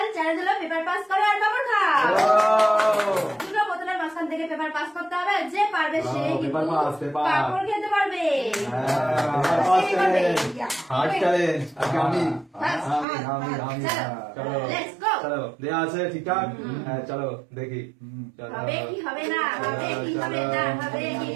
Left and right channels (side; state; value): left; drops out; at 13.1 s